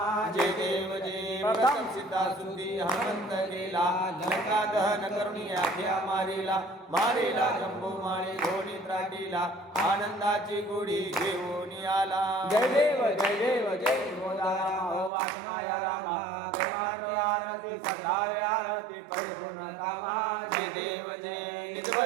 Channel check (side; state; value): left; drops out; at 15.1 s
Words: जय देव जय प्रथम सिद्धा सुंदी हनुमंत गेला लंका दहन करुणी आख्या मारेला जंबू माळे धोनी त्राटीला आनंदाची गुढी घेऊन आला जय देव जय बोला राम हो आत्मा या रामा परमार्थ आरती सद्भावे आरती परिपूर्ण कामा जय देव